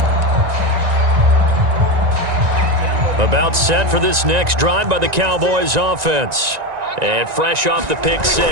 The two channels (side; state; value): left; late; 1.9 ms